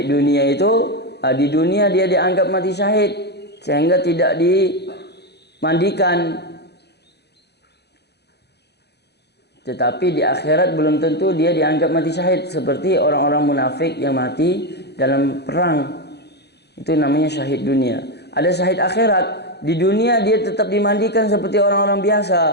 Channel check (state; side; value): late; right; 0.48 ms